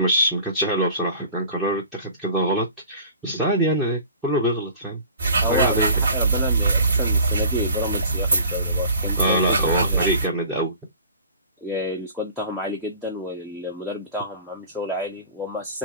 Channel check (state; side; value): inverted; both; correlation -0.44